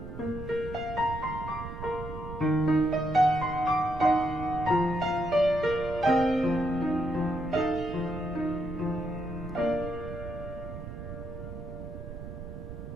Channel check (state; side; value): noise; right; rumble, 9 dB below the sound